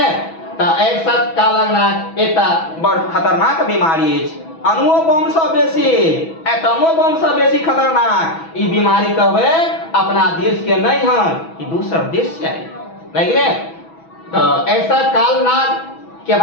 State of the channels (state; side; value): late; right; 6.1 ms